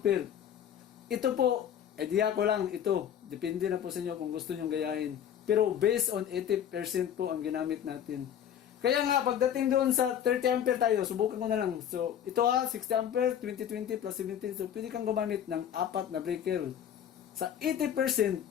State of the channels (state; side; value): quieter; right; 9.5 dB